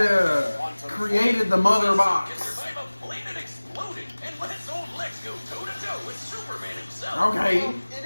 Created the Mother Can Box. survive a plane that exploded and lets old Lex go toe-to-toe with Superman himself. Okay. Well, it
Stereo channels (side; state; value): both; inverted; correlation -1.00